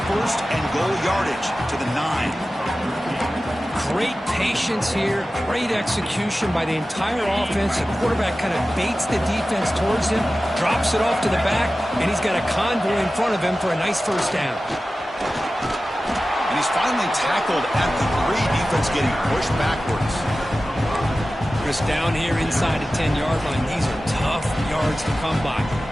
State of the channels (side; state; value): both; normal; correlation 0.95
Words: first and goal yardage to the 9. Great patience here, great execution by the entire offense. The quarterback kind of baits the defense towards him, drops it off to the back, and he's got a convoy in front of him for a nice first down. And he's finally tackled at the 3. Defense getting pushed backwards. Chris, down here inside the 10-yard line, these are tough yards to come by.